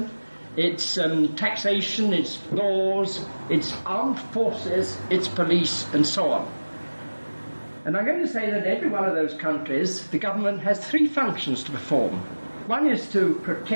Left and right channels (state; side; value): inverted; both; correlation -1.00